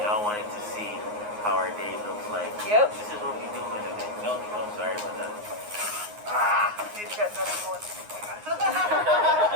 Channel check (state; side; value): late; left; 9.6 ms